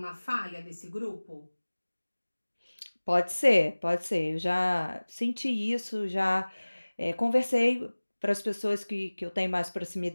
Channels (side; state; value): both; inverted; correlation -1.00